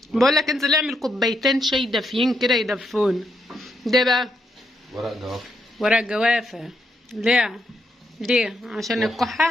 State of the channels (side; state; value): both; normal; correlation 0.79